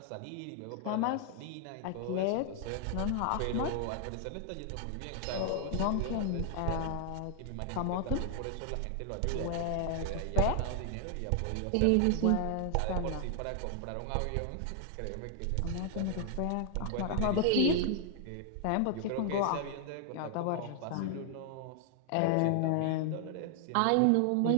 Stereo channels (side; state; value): both; different; correlation 0.00